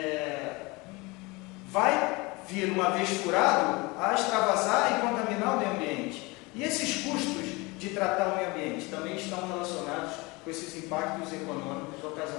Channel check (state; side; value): quieter; right; 24.9 dB